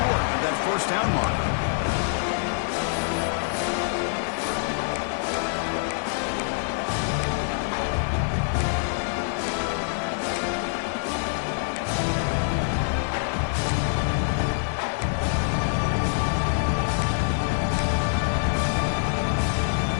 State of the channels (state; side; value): silent; right; 61 dB below the other